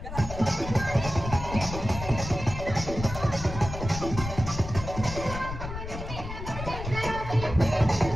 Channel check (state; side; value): noise; left; rumble, 8 dB below the sound